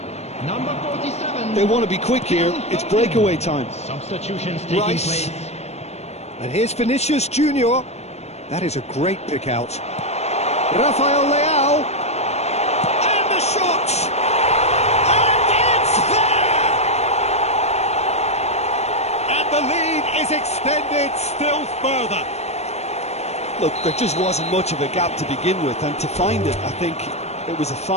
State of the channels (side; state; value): right; late; 0.31 ms